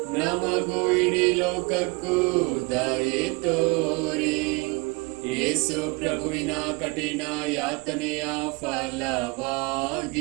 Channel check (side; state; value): left; quieter; 27.3 dB